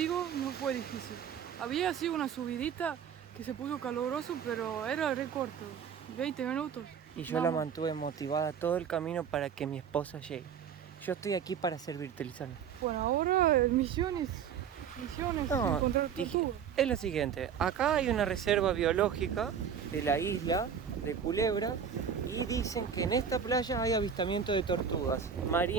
no fue difícil. Había así una subidita que se puso caluroso, pero era re corto, 20 minutos. Y yo la mantuve motivada todo el camino para que mi esposa llegue. Yo estoy aquí para servirte, Lisana. Bueno, ahora misiones, No, encontrar tortugas. es lo siguiente. Acá hay una reserva biológica de la isla de Culebra y dicen que en esta playa hay avistamiento de tortugas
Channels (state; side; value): quieter; left; 7.6 dB